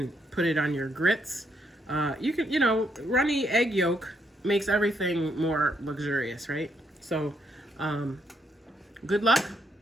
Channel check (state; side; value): normal; both; correlation 0.75